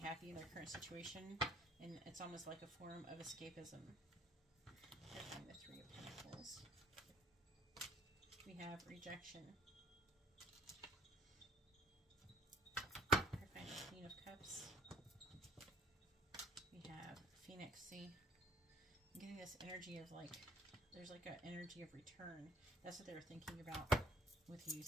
in their current situation, and it's almost like a form of escapism. Clarifying the Three of Pentacles. We have rejection. Clarifying the Queen of Cups. We have Phoenix. See, I'm getting this energy of like, there's like an energy of return. That's what they were thinking about with you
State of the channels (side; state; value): both; normal; correlation 0.58